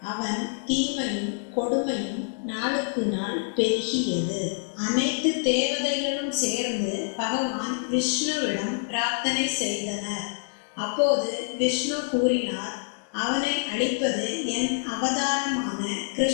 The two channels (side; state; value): right; silent; digital silence